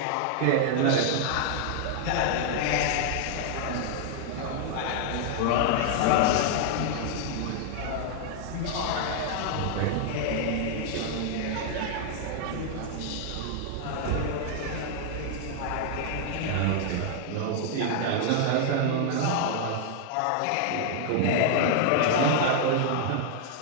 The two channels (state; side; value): different; both; correlation 0.00